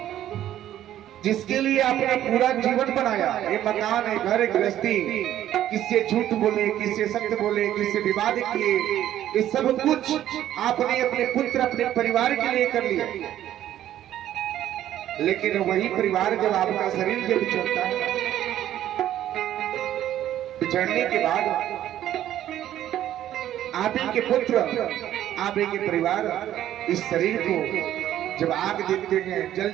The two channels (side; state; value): left; quieter; 12.1 dB